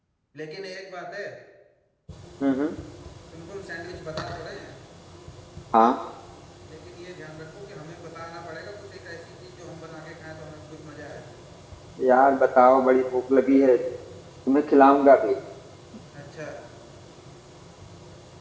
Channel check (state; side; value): identical; both; correlation 1.00